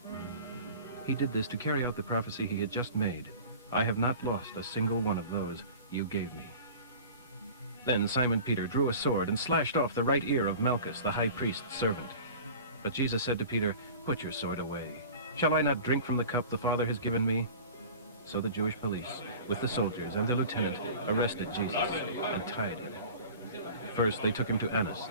He did this to carry out the prophecy he had just made. I have not lost a single one of those you gave me. Then Simon Peter drew a sword and slashed off the right ear of Malchus, the high priest's servant. But Jesus said to Peter, Put your sword away. Shall I not drink from the cup the Father has given me? So the Jewish police, with the soldiers and their lieutenant, arrested Jesus and tied him. First they took him to Annas,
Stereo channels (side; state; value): both; inverted; correlation -0.39